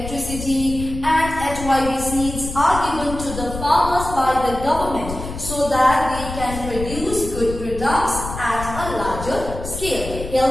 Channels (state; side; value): noise; left; rumble, 9 dB below the sound